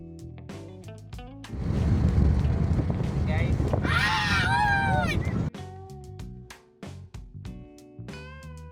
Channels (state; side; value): identical; both; correlation 1.00